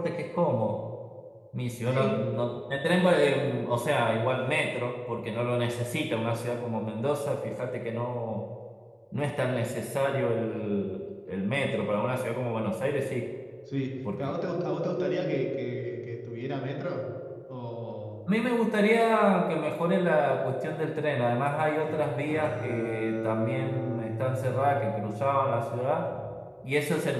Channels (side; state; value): both; identical; correlation 1.00